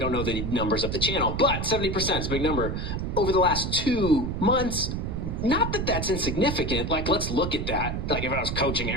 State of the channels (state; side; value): noise; right; rumble, 3 dB below the sound